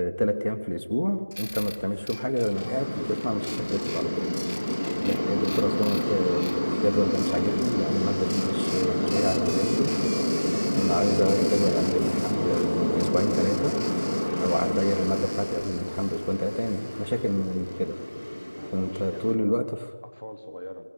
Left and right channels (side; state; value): both; inverted; correlation -1.00